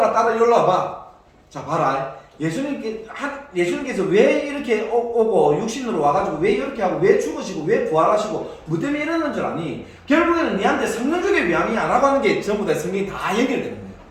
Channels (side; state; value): both; identical; correlation 1.00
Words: 딸아 일로 와봐. 자 봐라. 예수님께서 왜 이렇게 오고 육신으로 와가지고 왜 이렇게 하고 왜 죽으시고 왜 부활하시고 뭐 때문에 이러는 줄 아니? 결국에는 니한테 성령 주기 위함이야 라고 하는 게 전부 다 성경이 다 연결되는 거예요.